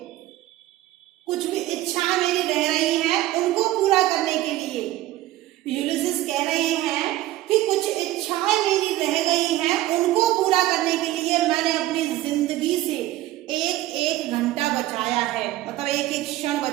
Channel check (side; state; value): left; quieter; 15.6 dB